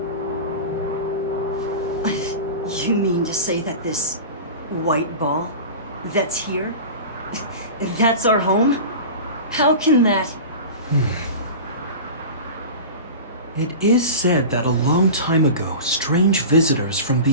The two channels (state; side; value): inverted; both; correlation -0.31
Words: You mean to say that this white ball that's here, that's our home? How can that... It is said that a long time ago, strange visitors from